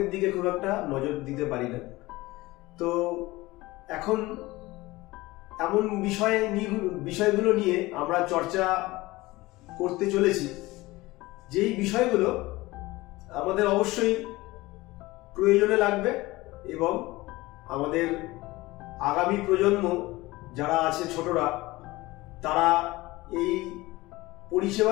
দিকে খুব একটা নজর দিতে পারি না। তো এখন এমন বিষয়গুলো নিয়ে আমরা চর্চা করতে চলেছি, যেই বিষয়গুলো আমাদের অবশ্যই প্রয়োজনে লাগবে এবং আমাদের আগামী প্রজন্ম যারা আছে, ছোটরা, তারা এই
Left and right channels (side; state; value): right; quieter; 20.0 dB